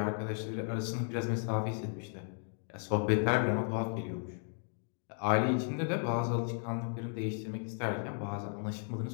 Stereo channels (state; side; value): silent; right; 54 dB below the other